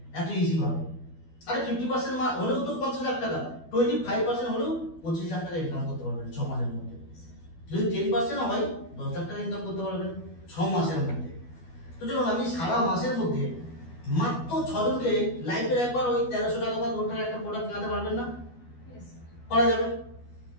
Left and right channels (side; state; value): right; late; 12 ms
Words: এত ইজি ভাবে। আরে 50% হলেও তো 50 লাখ টাকা, 25% হলেও 25 লাখ টাকা ইনকাম করতে পারবেন 6 মাসের মধ্যে। যদি 10% হয় 10 লাখ টাকা ইনকাম করতে পারবেন 6 মাসের মধ্যে। তো চলুন, আপনি সারা মাসের মধ্যে মাত্র 6 জনকে লাইফের একবার ওই 1300 টাকা বা 2 টাকা একটা প্রোডাক্ট কেনাতে পারবেন না? করা যাবে।